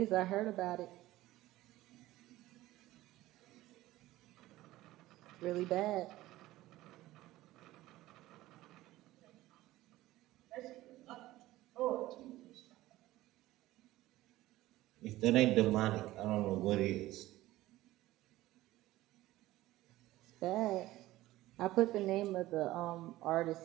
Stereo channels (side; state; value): left; quieter; 16.6 dB